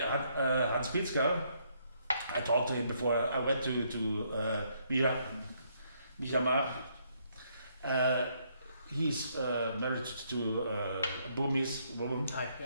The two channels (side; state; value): both; inverted; correlation -0.72